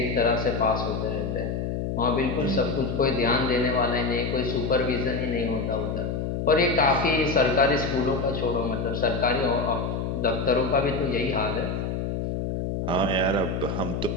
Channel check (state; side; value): noise; left; hum, 2 dB below the sound